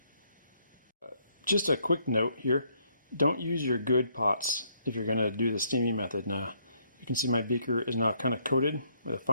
Just a quick note here, don't use your good pots if you're going to do the steaming method. Now, you can see my beaker is now kind of coated with a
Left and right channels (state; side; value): inverted; both; correlation -0.70